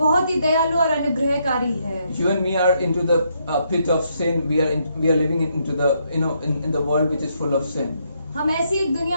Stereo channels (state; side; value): inverted; both; correlation -0.75